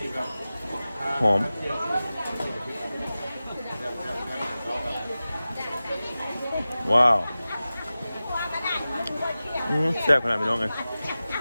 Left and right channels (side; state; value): both; inverted; correlation -0.96